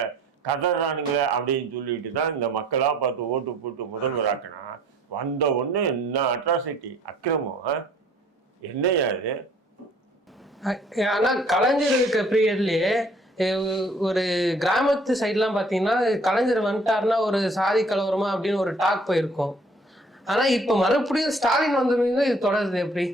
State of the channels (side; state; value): both; normal; correlation 0.57